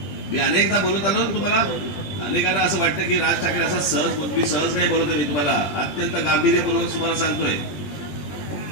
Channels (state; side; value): late; right; 20 ms